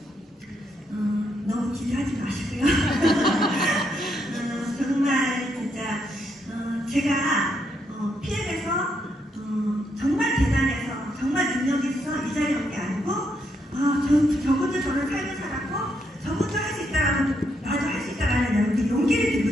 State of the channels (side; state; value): both; normal; correlation 0.77